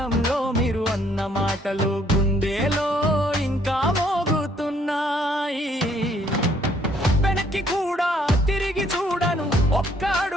మీరు అన్న మాటలు గుండెలో ఇంకా మోగుతున్నాయి. వెనక్కి కూడా తిరిగి చూడను ఒక్క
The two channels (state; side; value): normal; both; correlation 0.65